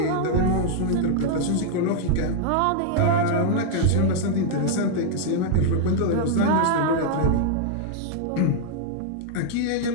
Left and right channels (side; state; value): both; different; correlation -0.01